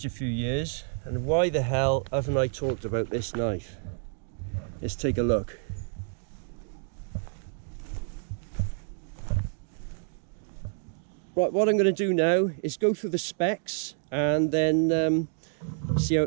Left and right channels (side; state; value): left; silent; 59 dB below the other